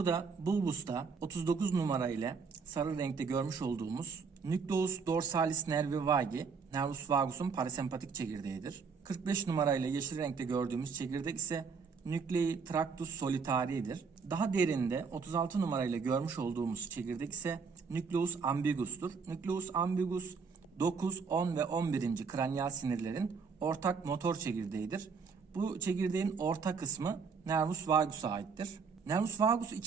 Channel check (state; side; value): quieter; left; 5.4 dB